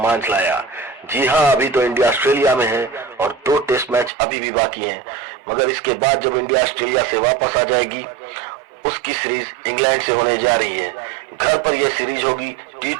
लाया। जी हां, अभी तो इंडिया ऑस्ट्रेलिया में है और 2 टेस्ट मैच अभी भी बाकी हैं। मगर इसके बाद जब इंडिया ऑस्ट्रेलिया से वापस आ जाएगी, उसकी सीरीज इंग्लैंड से होने जा रही है। घर पर यह सीरीज होगी,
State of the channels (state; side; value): drops out; left; at 4.1 s